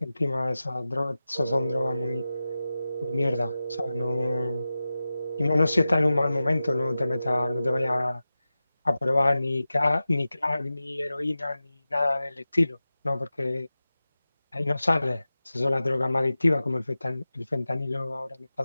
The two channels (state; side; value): inverted; both; correlation -0.94